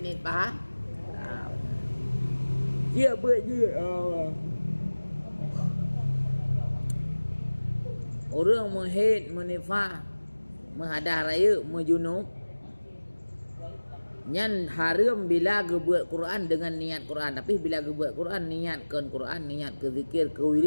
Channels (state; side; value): inverted; both; correlation -1.00